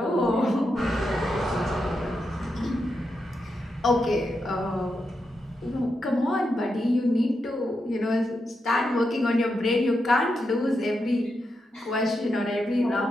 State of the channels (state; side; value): normal; both; correlation 0.86